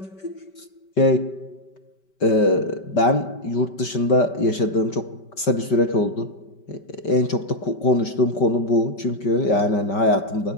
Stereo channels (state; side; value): late; right; 5.2 ms